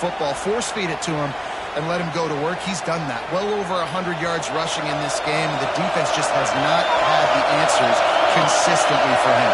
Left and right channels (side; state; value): both; identical; correlation 1.00